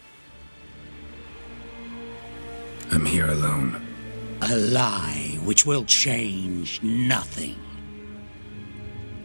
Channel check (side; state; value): both; inverted; correlation -1.00